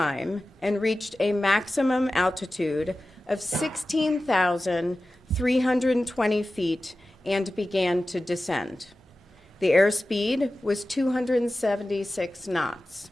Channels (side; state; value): both; normal; correlation 0.95